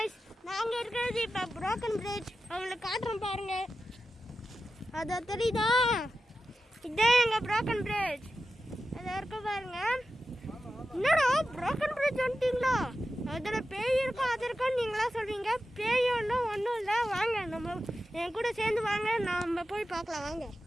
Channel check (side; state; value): both; normal; correlation 0.92